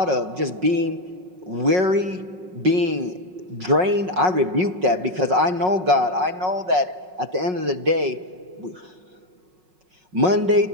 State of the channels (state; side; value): late; left; 5.5 ms